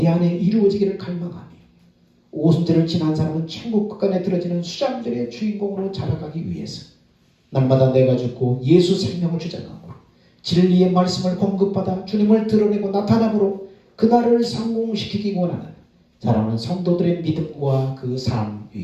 안에 이루어지기를 갈망하며 오순절을 지난 사람은 천국 끝간에 들어지는 수장절의 주인공으로 자라가기 위해서 날마다 내가 죽고 예수 생명을 주장하고 진리의 말씀을 공급받아 주님을 드러내고 나타남으로 그날을 성공시키기 원하는 사랑하는 성도들의 믿음과 그 삶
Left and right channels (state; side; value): identical; both; correlation 1.00